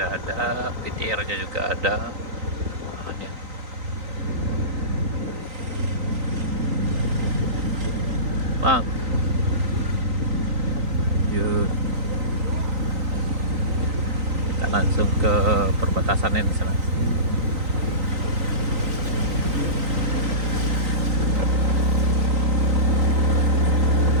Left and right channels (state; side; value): late; left; 3.9 ms